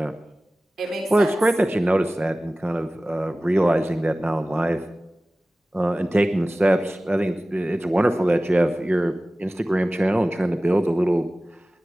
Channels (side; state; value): both; normal; correlation 0.97